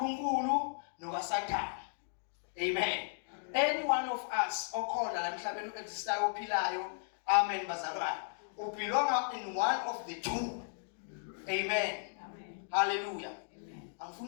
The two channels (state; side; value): silent; right; digital silence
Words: nokaSathane. Amen. Any one of us okhona la emhlabeni existayo ophilayo. Amen bazalwane. We belong in one of the two. Amen. Hallelujah.